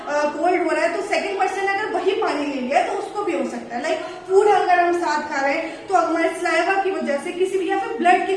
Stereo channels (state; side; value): identical; both; correlation 1.00